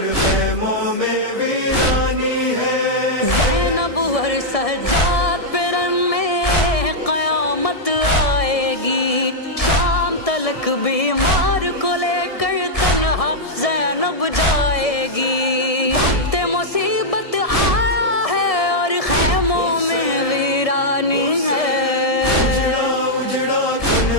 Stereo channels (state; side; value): late; right; 1.7 ms